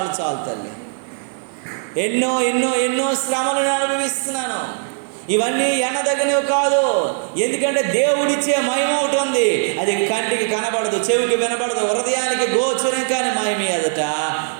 చాలు తల్లి, ఎన్నో ఎన్నో ఎన్నో శ్రమలు నేను అనుభవిస్తున్నాను. ఇవన్నీ ఎన్నదగినవి కాదు. ఎందుకంటే దేవుడిచ్చే మహిమ ఒకటి ఉంది, అది కంటికి కనబడదు, చెవికి వినబడదు, హృదయానికి గోచరం కాని మహిమ ఎదుట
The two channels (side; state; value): left; silent; digital silence